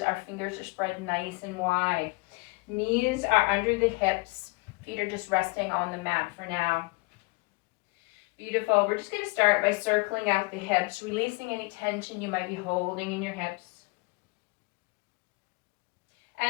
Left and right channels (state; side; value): quieter; right; 26.8 dB